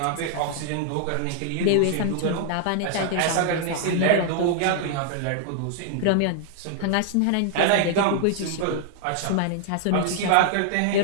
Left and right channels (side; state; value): both; different; correlation 0.00